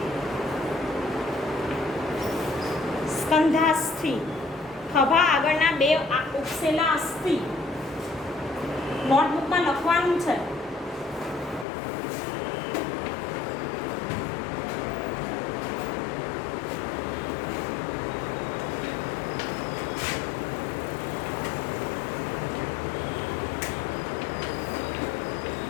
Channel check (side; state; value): right; drops out; at 11.7 s